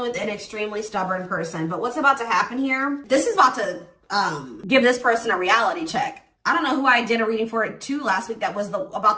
with an extremely stubborn person. But what's about to happen here? This is about to give this person a reality check. I don't know who I did a reading for it too last week that was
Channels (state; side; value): identical; both; correlation 1.00